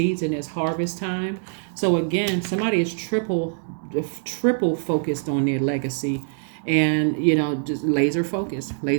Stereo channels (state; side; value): silent; left; 62 dB below the other